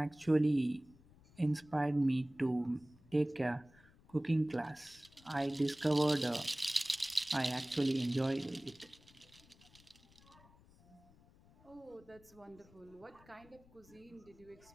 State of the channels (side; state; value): left; noise; rumble, 26 dB below the sound